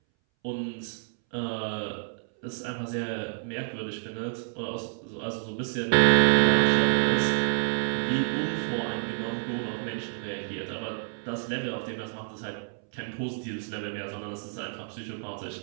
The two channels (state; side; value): silent; left; 59 dB below the other